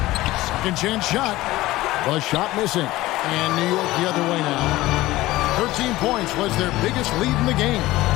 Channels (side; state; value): right; quieter; 17.6 dB